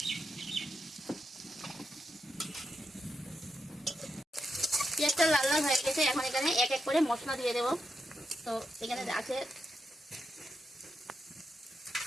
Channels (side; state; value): both; normal; correlation 0.84